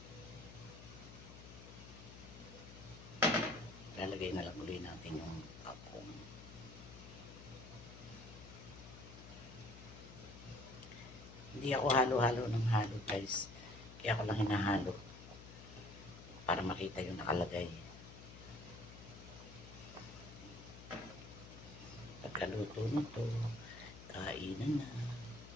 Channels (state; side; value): noise; left; hum, 15 dB below the sound